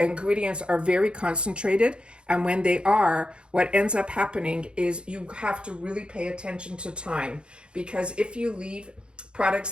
are very concentrated. And when they are, what ends up happening is you have to really pay attention to time. Because if you leave products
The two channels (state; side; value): late; left; 0.054 ms